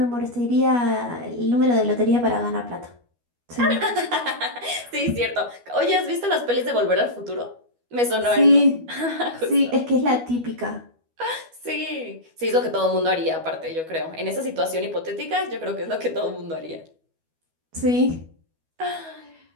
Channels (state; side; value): late; left; 12 ms